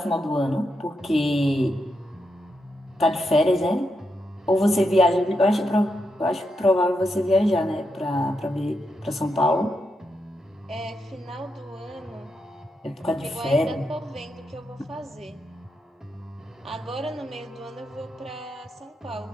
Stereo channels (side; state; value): both; normal; correlation 0.84